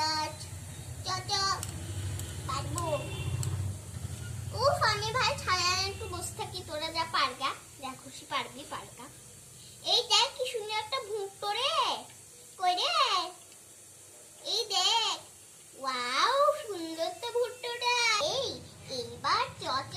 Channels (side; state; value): both; identical; correlation 1.00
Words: পারবো। উফ, আমি ভাই ছায়া একটু বসে থাকি, তোরা যা পারগা, যা খুশি পারবি পারগা। এই দেখ কি সুন্দর একটা ভুট্টো রে। কই রে? এই দেখ, ওয়াও সুন্দর তো ভুট্টোটা। এইবার